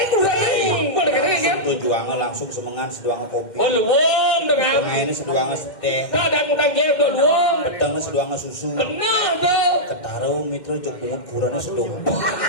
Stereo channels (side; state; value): right; late; 2.1 ms